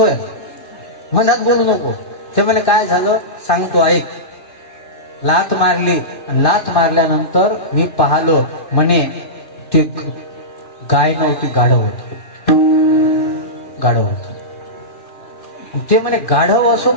मधात बोलू नको. ते म्हणे, काय झालं सांगतो, ऐक. लाथ मारली, लाथ मारल्यानंतर मी पाहलो. म्हणे, ती गाय नव्हती, गाढव होती. गाढव होत. ते म्हणे, गाढव असो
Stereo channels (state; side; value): late; right; 2.6 ms